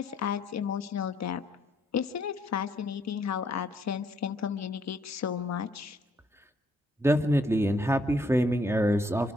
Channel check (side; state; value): both; normal; correlation 0.69